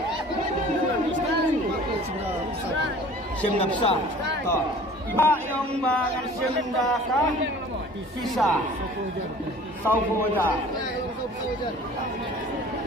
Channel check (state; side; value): normal; both; correlation 0.46